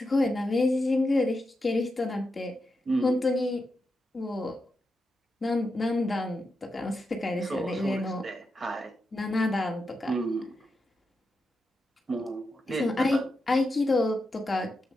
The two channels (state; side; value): normal; both; correlation 0.87